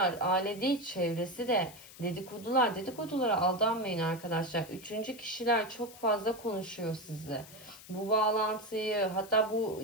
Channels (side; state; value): left; noise; hiss, 18 dB below the sound